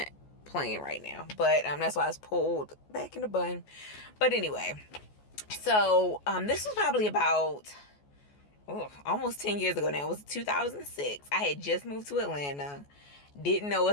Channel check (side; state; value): right; late; 14 ms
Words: playing right now. But that's why it's pulled back in the bun. But anyway, so this was probably about almost 10 years ago now. It was 2006. I had just moved to Atlanta, didn't know